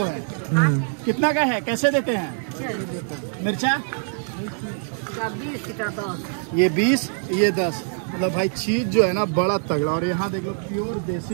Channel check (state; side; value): silent; left; 63 dB below the other